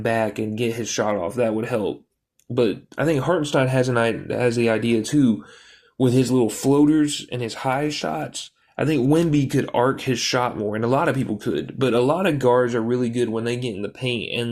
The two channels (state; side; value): identical; both; correlation 1.00